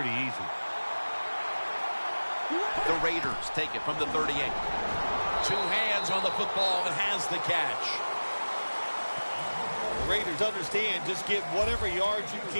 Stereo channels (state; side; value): inverted; both; correlation -1.00